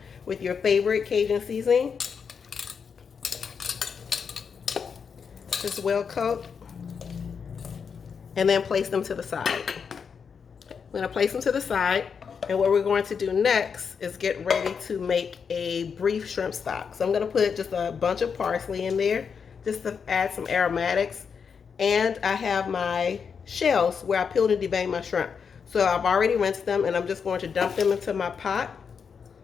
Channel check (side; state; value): right; quieter; 6.3 dB